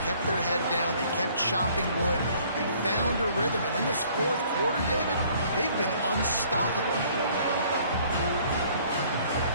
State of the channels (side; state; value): both; inverted; correlation -0.58